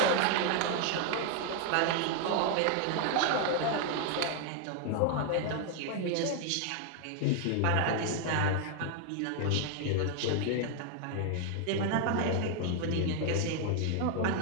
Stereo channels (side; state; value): both; different; correlation 0.00